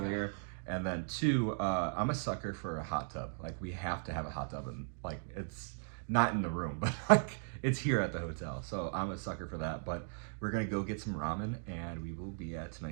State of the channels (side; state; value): left; silent; digital silence